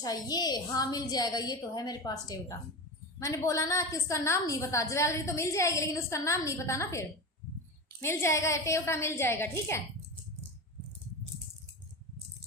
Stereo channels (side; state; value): both; normal; correlation 0.24